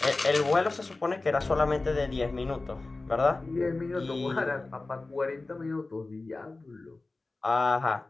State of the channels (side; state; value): right; quieter; 3.3 dB